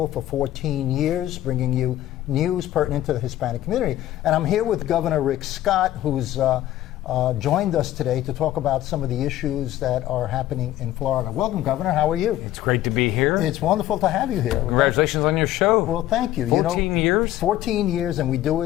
for 14 years, bringing you news pertinent to the Hispanic community. And I'm here with Governor Rick Scott, who's joined us today to talk about some of the issues that are happening in Florida. Welcome, Governor. How are you? It's great to be here. It's wonderful to have you here. Congratulations on your show. Well, thank you. 14 years? 14 years, and we do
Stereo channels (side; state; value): right; quieter; 13.9 dB